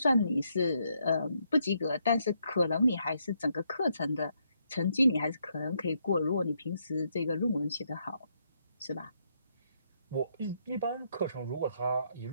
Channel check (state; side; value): inverted; both; correlation -0.76